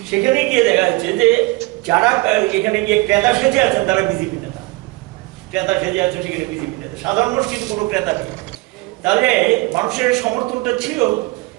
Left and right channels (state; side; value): quieter; left; 23.1 dB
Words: সেখানে গিয়ে দেখা যাচ্ছে যে যারা এখানে গিয়ে ক্রেতা সেজে আছেন তারা বিজেপি নেতা, ক্রেতা সেজে আছেন সেখানে বিজেপি নেতা, সাধারণ মানুষ কিন্তু কোনো ক্রেতা নেই। তাহলে মানুষের সমর্থনটা ছিল।